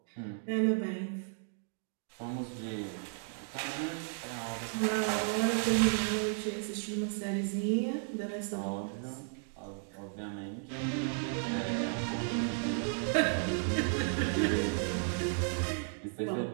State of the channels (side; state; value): left; silent; 55 dB below the other